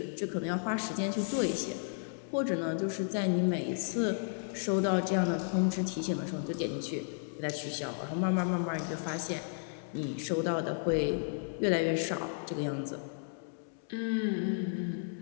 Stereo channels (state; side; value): silent; right; digital silence